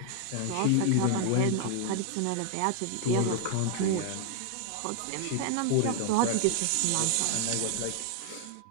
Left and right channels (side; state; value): both; different; correlation 0.00